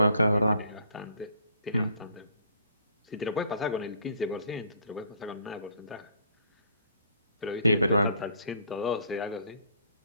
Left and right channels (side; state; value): both; inverted; correlation -0.60